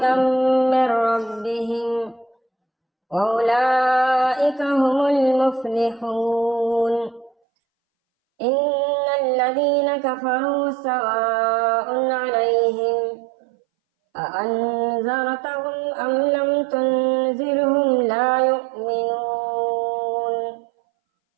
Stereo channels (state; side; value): drops out; left; at 7.3 s